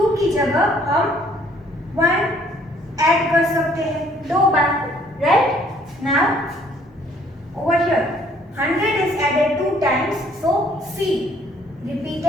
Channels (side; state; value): both; normal; correlation 0.61